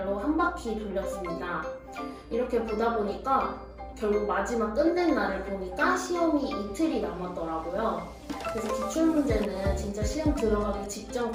한 바퀴 돌렸습니다. 이렇게 보다 보니까 결국 마지막 끝낸 날을 보니까 시험이 이틀이 남았더라고요. 그래서 기출문제는 진짜 시험 들어가기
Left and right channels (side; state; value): both; identical; correlation 1.00